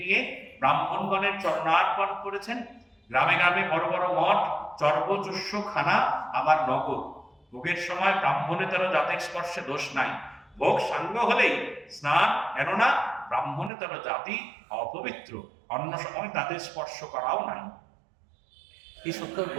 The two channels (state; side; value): drops out; left; at 13.7 s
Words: নিয়ে ব্রাহ্মণগণের চরণার্পণ করেছেন। গ্রামে গ্রামে বড় বড় মঠ, চর্বচুষ্য খানা, আবার নগর। ভোগের সময় ব্রাহ্মণেতর জাতের স্পর্শে দোষ নাই। ভোগ সাঙ্গ হলেই স্নান, কেননা ব্রাহ্মণেতর জাতি অপবিত্র, অন্য সময় তাদের স্পর্শ করাও নাই। এই সত্য